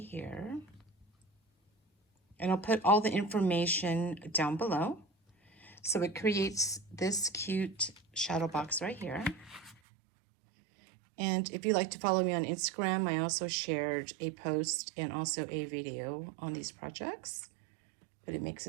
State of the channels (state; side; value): drops out; left; at 9.8 s